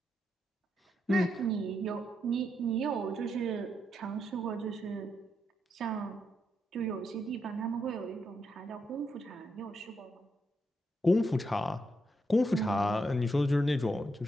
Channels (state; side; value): normal; both; correlation 0.81